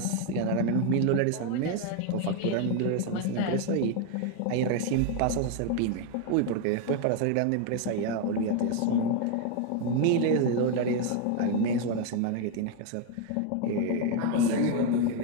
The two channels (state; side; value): different; both; correlation 0.01